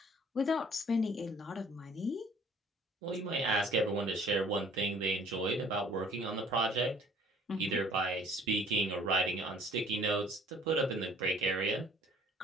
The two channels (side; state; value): both; normal; correlation 0.54